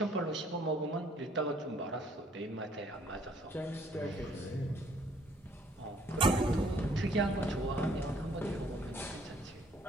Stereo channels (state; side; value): normal; both; correlation 0.62